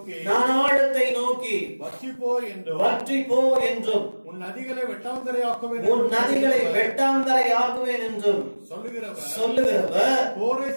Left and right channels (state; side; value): inverted; both; correlation -1.00